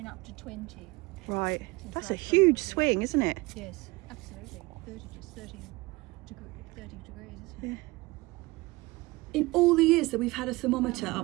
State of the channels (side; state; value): left; quieter; 22.4 dB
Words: up to 20. Right. That's a huge swing, isn't it? Yes, absolutely. 30 degrees, isn't it? In all the years that we've had a thermometer